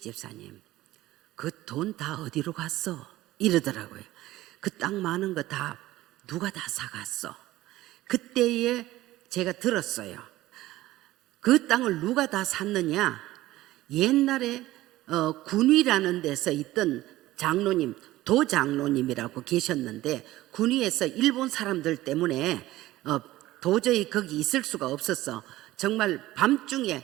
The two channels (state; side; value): quieter; left; 16.5 dB